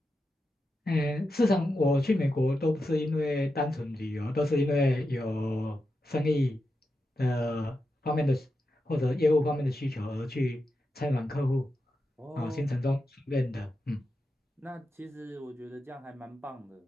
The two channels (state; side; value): normal; both; correlation 0.88